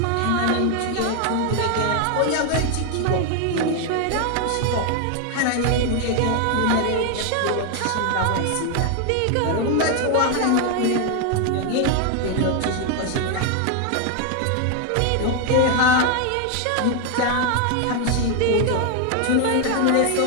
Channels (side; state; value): both; different; correlation 0.01